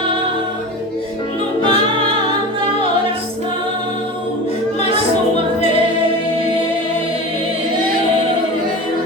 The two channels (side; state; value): both; normal; correlation 0.31